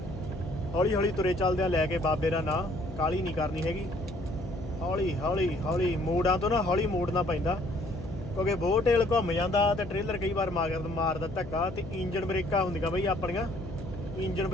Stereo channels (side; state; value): left; noise; hum, 12 dB below the sound